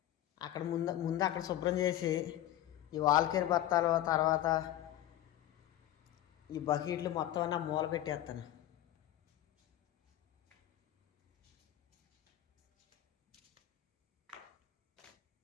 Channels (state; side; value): quieter; right; 13.2 dB